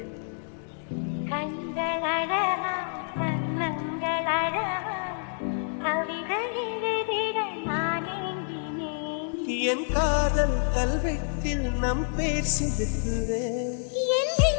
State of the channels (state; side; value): silent; right; 59 dB below the other